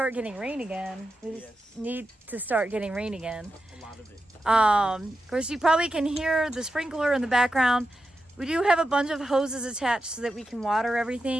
getting rain again. We just need to start getting rain again. A lot of it. Of course, you probably can hear the sprinkler in the background. We do have a bunch of hoses attached so that we can water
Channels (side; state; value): both; normal; correlation 0.89